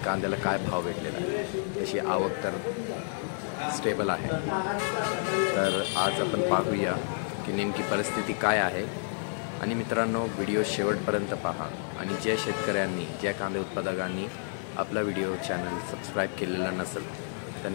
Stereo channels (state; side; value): silent; right; digital silence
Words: कांद्याला काय भाव भेटलेला आहे, त्याची आवक तर स्टेबल आहे। तर आज आपण पाहूया की नेमकी परिस्थिती काय आहे। आणि मित्रांनो, व्हिडिओ शेवटपर्यंत पहा आणि ज्या शेतकऱ्यांनी ज्या कांदा उत्पादकांनी आपला व्हिडिओ चॅनल सबस्क्राईब केलेला नसेल